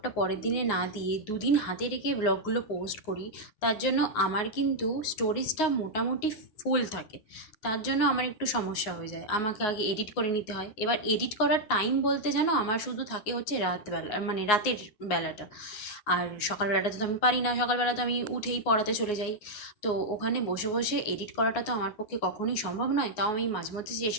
পরের দিনে না দিয়ে দুদিন হাতে রেখে ব্লগগুলো পোস্ট করি, তার জন্য আমার কিন্তু স্টোরেজটা মোটামুটি ফুল থাকে। তার জন্য আমার একটু সমস্যা হয়ে যায়, আমাকে আগে এডিট করে নিতে হয়। এবার এডিট করার টাইম বলতে জানো আমার শুধু থাকে হচ্ছে রাতবেলা, মানে রাতের বেলাটা। আর সকালবেলাটা তো আমি পারি না, সকালবেলা তো আমি উঠেই পড়াতে চলে যাই। তো ওখানে বসে বসে এডিট করাটা তো আমার পক্ষে কখনোই সম্ভব নয়। তাও আমি মাঝে মধ্যে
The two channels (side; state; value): right; late; 9.5 ms